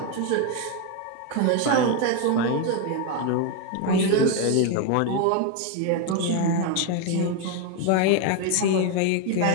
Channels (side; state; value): both; different; correlation 0.02